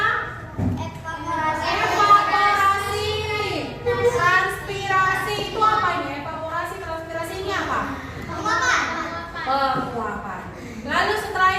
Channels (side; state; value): both; identical; correlation 1.00